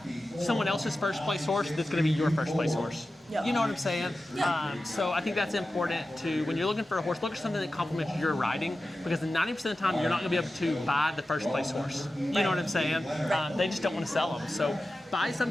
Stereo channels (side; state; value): both; normal; correlation 0.94